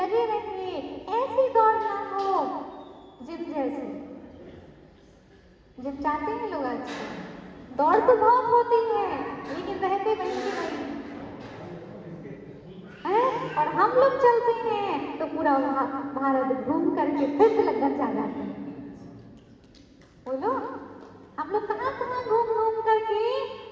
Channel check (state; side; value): identical; both; correlation 1.00